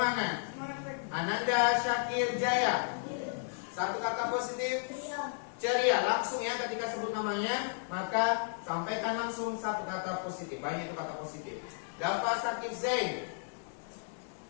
Ananda Syakir Jaya. Satu kata positif. Ceria. Langsung ya, ketika sebut namanya, maka sampaikan langsung satu kata positif. Banyak itu kata positif. Dafa Sakib Zain.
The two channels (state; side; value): silent; right; 55 dB below the other